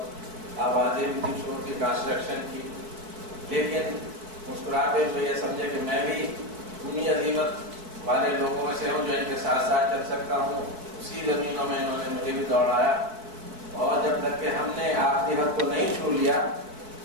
آوازیں بھی تھی شور کی، کنسٹرکشن کی، لیکن مسکراتے ہوئے یہ سمجھے کہ میں بھی انہی عظیمت والے لوگوں میں سے ہوں جو ان کے ساتھ ساتھ چل سکتا ہوں. اسی زمینوں میں انہوں نے مجھے بھی دوڑایا، اور جب تک کہ ہم نے آخری حد کو نہیں چھو لیا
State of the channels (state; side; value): late; left; 4.6 ms